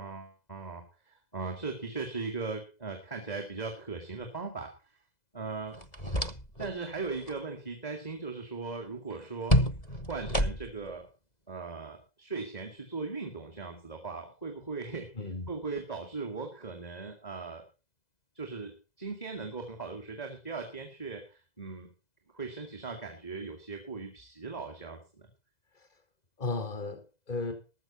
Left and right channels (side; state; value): right; late; 2.0 ms